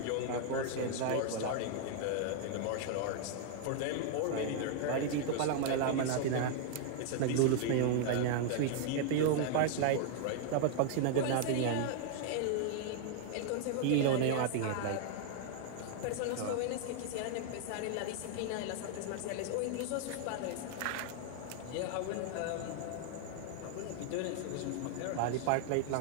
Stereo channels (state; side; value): different; both; correlation 0.00